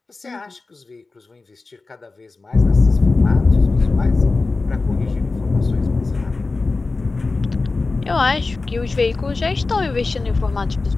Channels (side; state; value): right; quieter; 3.7 dB